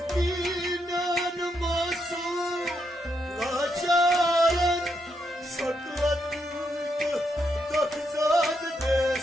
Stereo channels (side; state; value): both; normal; correlation 0.80